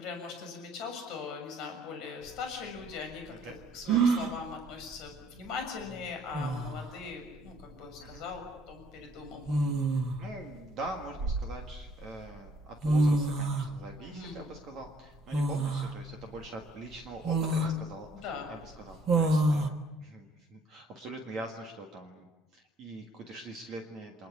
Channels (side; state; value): both; normal; correlation 0.62